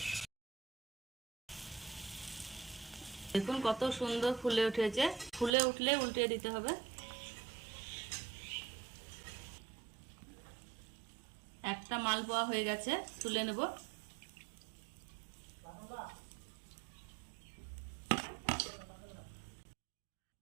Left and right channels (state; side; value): drops out; left; at 5.5 s